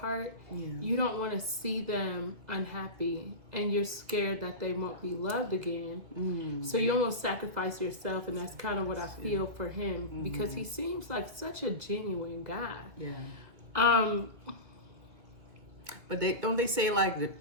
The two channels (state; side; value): late; left; 2.2 ms